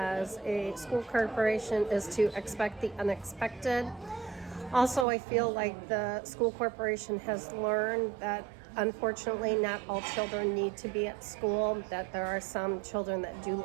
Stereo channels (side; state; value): left; drops out; at 5.1 s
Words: a school corporation, is to expect the unexpected. Also, I feel like the school corporation has learned that unfortunately not all children need to be at school, that there are some children that do